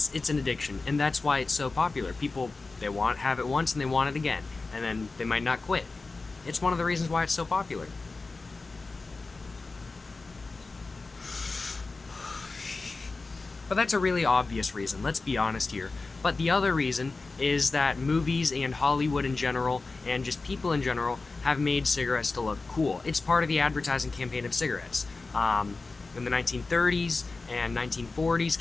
an addiction, and that's why it's so popular. People, they have it once and they want it again, and then they might not quit. It's one of the reasons why it's so popular. But that's a really obvious reason, let's be honest here. But the other reason is that movies and Hollywood in general, and just people in general, have made cigarettes to look cool. It's part of the advertising campaign of cigarettes. In the 1930s and 1940s,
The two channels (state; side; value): quieter; right; 3.8 dB